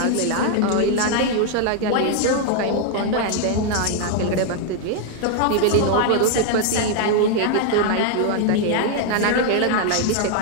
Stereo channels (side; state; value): both; different; correlation 0.00